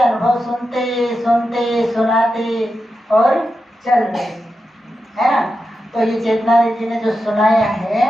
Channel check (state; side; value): normal; both; correlation 0.89